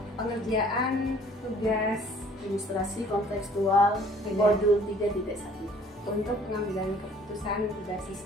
pengerjaan tugas Ilustrasi kontekstual modul 3.1 untuk pengambilan keputusan tugas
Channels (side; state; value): both; normal; correlation 0.55